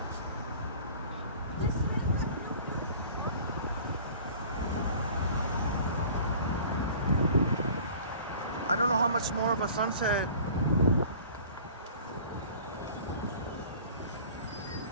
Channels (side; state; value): both; inverted; correlation -0.46